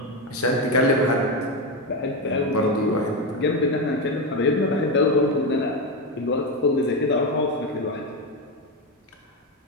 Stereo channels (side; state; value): both; normal; correlation 0.12